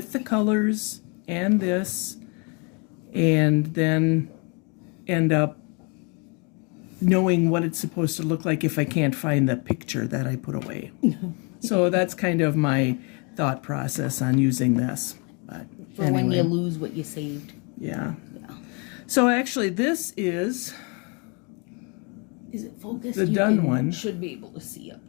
the colors and this, and then end up knowing what it's supposed to look like if I can't find the picture that I put away. So that's kind of my thought process on using this. But For anyway. when you lose what you saved. Yeah. So actually this is Is it focused? the You done one. should be able to see up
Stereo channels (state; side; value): quieter; right; 33.7 dB